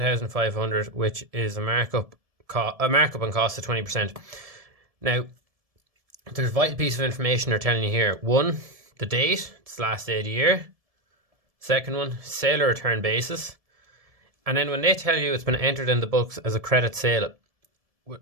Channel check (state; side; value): late; left; 1.7 ms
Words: which is a markup on cost of 20%. Now, there's a vital piece of information they're telling you here. One, the date, it's the last day of the year. Second one, sale or return basis. And then when they tell you it's been entered in the books as a credit sale,